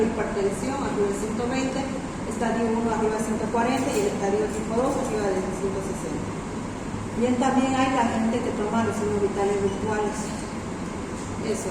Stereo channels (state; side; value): identical; both; correlation 1.00